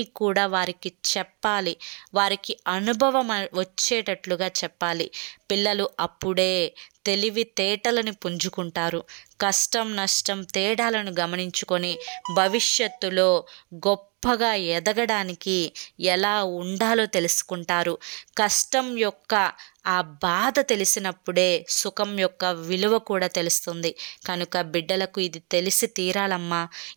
కూడా వారికి చెప్పాలి, వారికి అనుభవం వచ్చేటట్లుగా చెప్పాలి. పిల్లలు అప్పుడే తెలివితేటలను పుంజుకుంటారు. కష్టం నష్టం తేడాలను గమనించుకొని భవిష్యత్తులో గొప్పగా ఎదగడానికి ఎలా ఉండాలో తెలుసుకుంటారు. కష్టం యొక్క ఆ బాధ తెలిసినప్పుడే సుఖం యొక్క విలువ కూడా తెలుస్తుంది. కనుక బిడ్డలకు ఇది తెలిసి తీరాలమ్మా.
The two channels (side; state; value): left; quieter; 34.5 dB